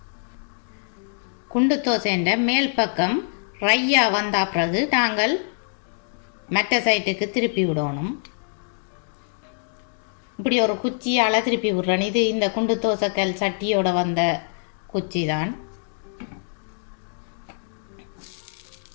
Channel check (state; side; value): silent; right; digital silence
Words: குண்டு தோசைன்ற மேல் பக்கம் ரையாக வந்த பிறகு நாங்கள் மற்ற சைட்டுக்கு திருப்பி விடணும். இப்படி ஒரு குச்சியால் திருப்பி விடுறேன். இது இந்த குண்டு தோசைக்கல் சட்டியோட வந்த குச்சி தான்.